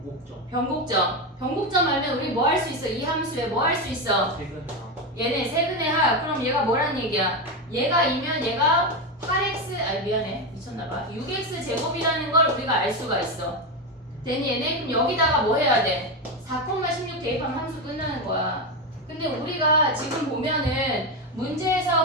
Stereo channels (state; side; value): normal; both; correlation 0.13